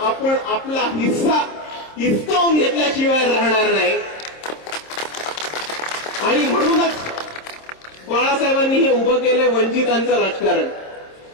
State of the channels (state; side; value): late; right; 26 ms